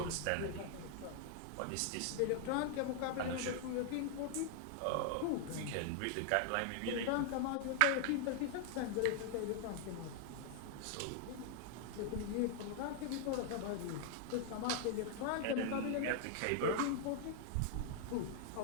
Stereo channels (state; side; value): different; both; correlation 0.00